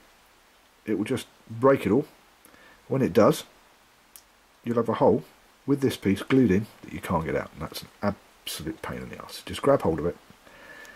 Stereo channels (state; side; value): identical; both; correlation 1.00